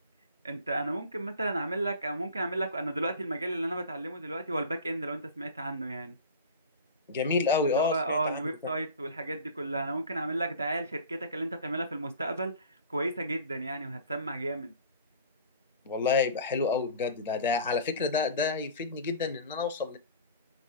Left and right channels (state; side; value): inverted; both; correlation -0.39